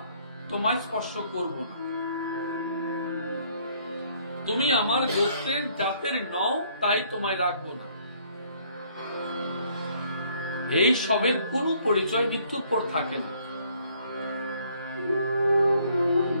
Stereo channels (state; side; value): inverted; both; correlation -0.63